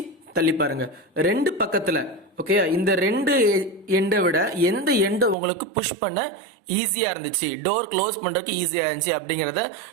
தள்ளி பாருங்க. ரெண்டு பக்கத்துல ஓகே, இந்த ரெண்டு எண்டை விட எந்த எண்டை உங்களுக்கு புஷ் பண்ண ஈஸியா இருந்துச்சு, டோர் க்ளோஸ் பண்றதுக்கு ஈஸியா இருந்துச்சு அப்படிங்கறத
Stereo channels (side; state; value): left; drops out; at 5.4 s